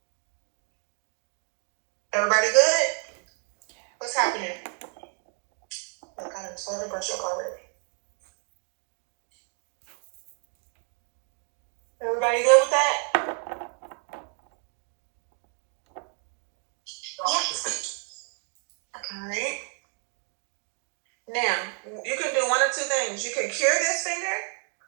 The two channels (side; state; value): left; quieter; 39.3 dB